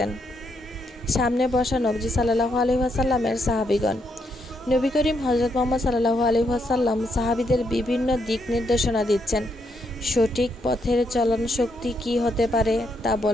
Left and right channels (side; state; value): both; normal; correlation 0.77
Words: সামনে বসা নবীজি সাল্লাল্লাহু আলাইহি ওয়াসাল্লামের সাহাবীগণ। নবী করিম হযরত মুহাম্মদ সাল্লাল্লাহু আলাইহি ওয়াসাল্লাম সাহাবীদের বিভিন্ন দিক নির্দেশনা দিচ্ছেন। সঠিক পথের চলন শক্তি কি হতে পারে তা